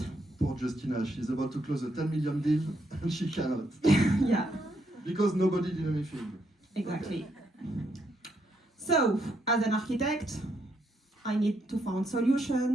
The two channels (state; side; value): normal; both; correlation 0.76